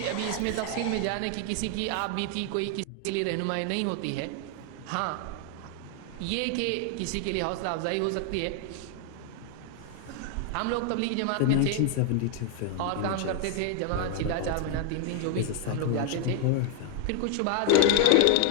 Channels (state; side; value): different; both; correlation 0.00